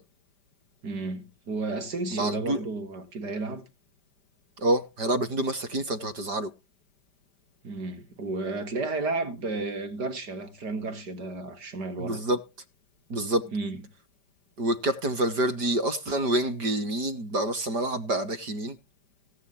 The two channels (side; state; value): left; late; 5.0 ms